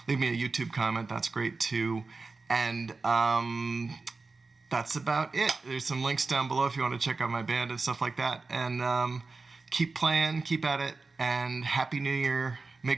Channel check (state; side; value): quieter; left; 3.9 dB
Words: Leave me a YouTube comment. That's great too. And that's about it. There's some links down below if you want to check out my band and stuff like that. And keep playing, keep at it, and Happy New Year.